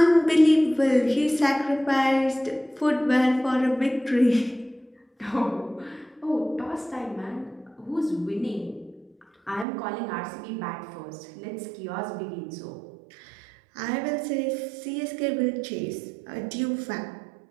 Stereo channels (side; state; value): left; drops out; at 9.7 s